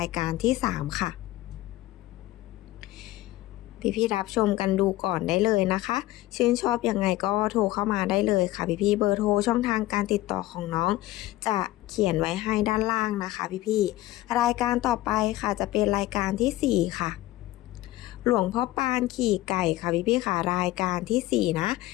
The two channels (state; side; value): quieter; right; 16.8 dB